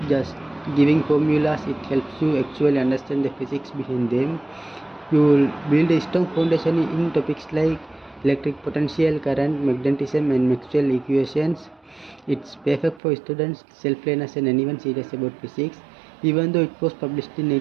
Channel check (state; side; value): drops out; left; at 13.0 s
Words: just giving formulas, it helps you actually understand the physics behind them. You will build a strong foundation in topics like electric potential, current, magnetism, and Maxwell equations. It's perfect for students, self-learners, and anyone serious about physics. Even though it was published in